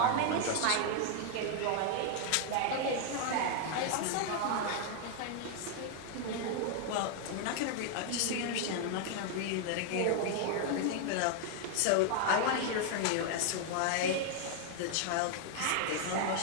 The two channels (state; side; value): different; both; correlation 0.00